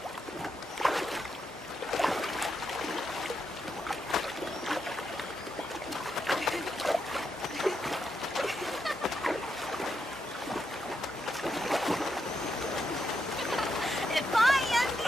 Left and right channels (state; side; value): normal; both; correlation 0.83